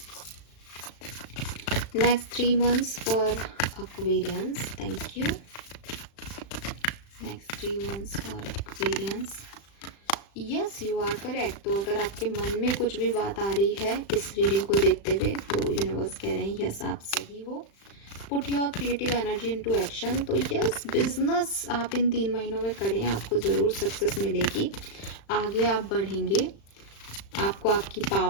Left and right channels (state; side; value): late; right; 35 ms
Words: Next 3 months for Aquarians. Thank you. Next 3 months for Aquarians. Yes, you are correct. तो अगर आपके मन में कुछ भी बात आ रही है इस रीडिंग को देखते हुए, तो यूनिवर्स कह रहे हैं यस आप सही हो। Put your creative energy into action. तो यस, बिजनेस आप इन 3 महीनों में करें, आपको ज़रूर सक्सेस मिलेगी, आगे आप बढ़ेंगे, आपको आपकी